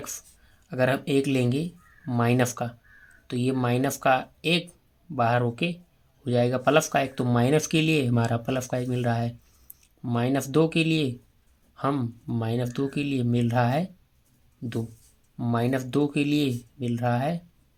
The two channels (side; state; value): both; identical; correlation 1.00